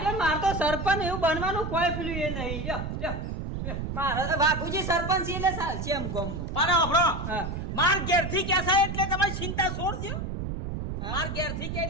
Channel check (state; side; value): noise; right; rumble, 4 dB below the sound